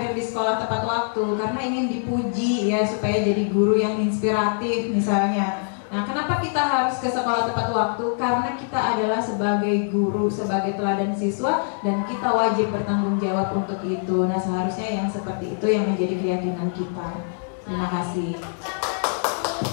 di sekolah tepat waktu? Karena ingin dipuji ya, supaya jadi guru yang inspiratif misalnya. Nah, kenapa kita harus ke sekolah tepat waktu? Karena kita adalah sebagai guru, sebagai teladan siswa, dan kita wajib bertanggung jawab untuk itu. Nah, seharusnya yang seperti itu yang menjadi keyakinan kita. Terima kasih.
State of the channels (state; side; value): silent; right; 63 dB below the other